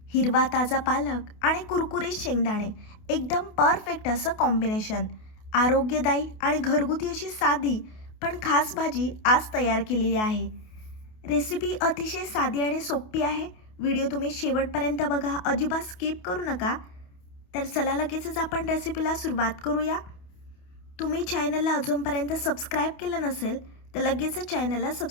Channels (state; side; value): late; right; 28 ms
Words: हिरवा ताजा पालक आणि कुरकुरीत शेंगदाणे एकदम परफेक्ट असं कॉम्बिनेशन. आरोग्यदायी आणि घरगुती अशी साधी पण खास भाजी आज तयार केलेली आहे. रेसिपी अतिशय साधी आणि सोपी आहे. व्हिडिओ तुम्ही शेवटपर्यंत बघा, अजिबात स्किप करू नका. तर चला लगेचच आपण रेसिपीला सुरुवात करूया. तुम्ही चॅनलला अजूनपर्यंत सबस्क्राईब केलं नसेल तर लगेचच चॅनलला